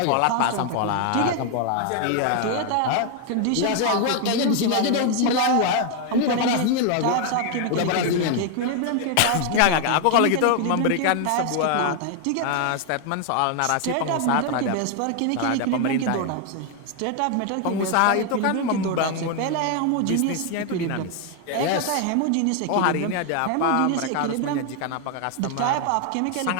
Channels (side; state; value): both; different; correlation 0.00